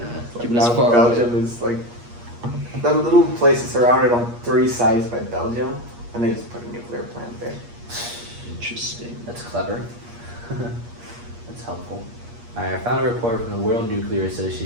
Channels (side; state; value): left; late; 8.5 ms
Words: Like keep it as now far Belgium away. is like that little place is surrounded on 3 sides by Belgium, and they just put a nuclear plant there. Interesting. That's clever. That's helpful. I found a report from the World Nuclear